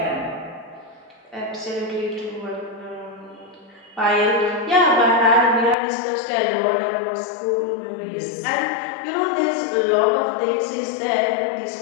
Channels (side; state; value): right; drops out; at 5.8 s